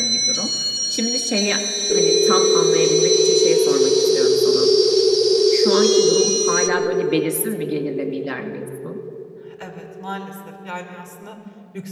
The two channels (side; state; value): both; identical; correlation 1.00